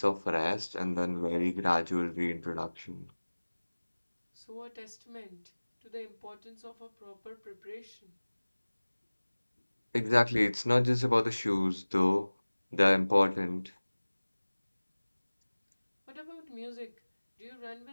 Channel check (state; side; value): inverted; both; correlation -1.00